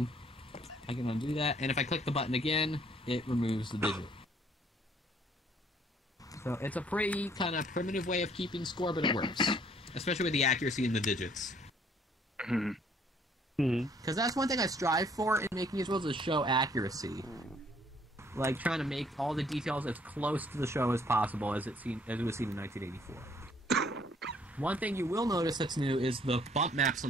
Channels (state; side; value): normal; both; correlation 0.63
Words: I can undo that, and if I click the button again, it removes the digit. So it's a pretty kind of primitive way of keeping score, but it works. Especially with the accuracy in the digits. Because that's one thing I strive for in making these rules is show accuracy. Like trying to make all the details as close to the show as possible as it was seen in 1984. One thing you will notice that's new is the bump maps